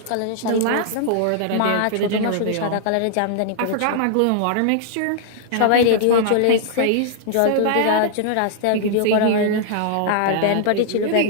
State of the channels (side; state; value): both; different; correlation -0.01